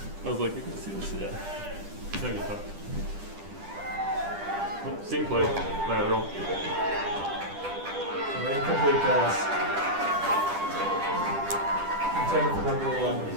I was like, you can see this, yeah. No, you thought. Oh, same play, lateral. An incomplete pass. Intended for number 11.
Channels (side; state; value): left; late; 10 ms